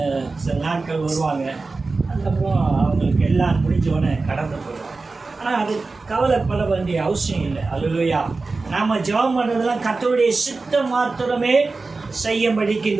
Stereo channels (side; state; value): left; quieter; 3.8 dB